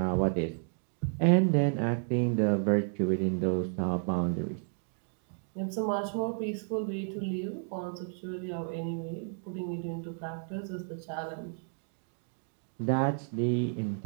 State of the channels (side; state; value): left; silent; 56 dB below the other